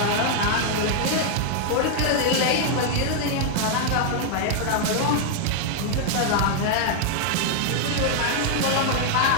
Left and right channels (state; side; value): different; both; correlation 0.00